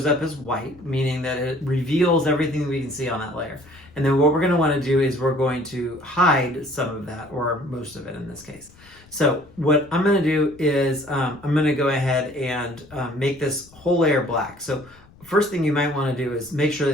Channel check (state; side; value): noise; left; rumble, 26 dB below the sound